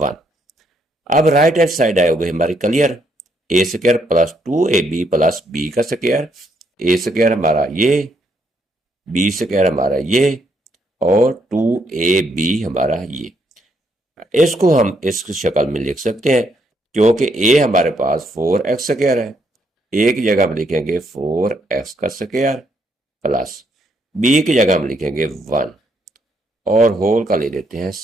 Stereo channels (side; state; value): both; normal; correlation 0.73